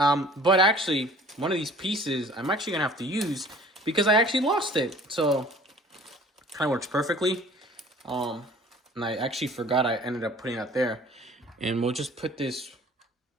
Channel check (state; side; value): normal; both; correlation 0.49